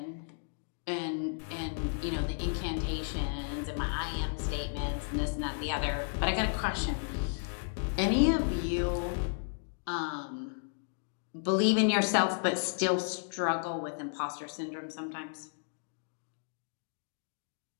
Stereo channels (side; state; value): right; silent; digital silence